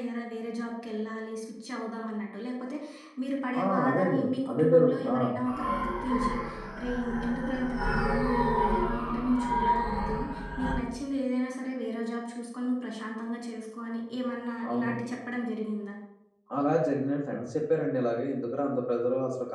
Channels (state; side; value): identical; both; correlation 1.00